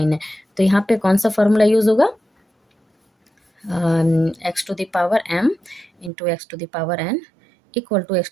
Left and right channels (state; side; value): drops out; left; at 6.1 s